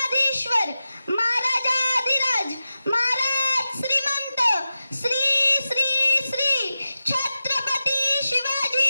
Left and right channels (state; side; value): inverted; both; correlation -0.92